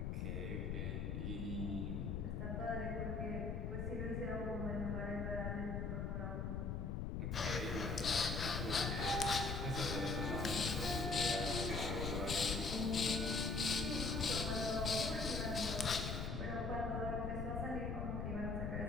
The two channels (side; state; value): left; noise; rumble, 2 dB below the sound